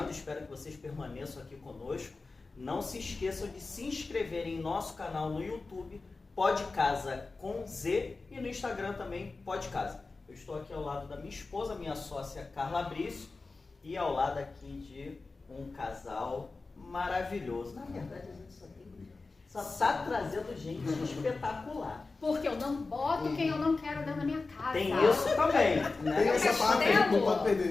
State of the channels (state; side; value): quieter; right; 3.8 dB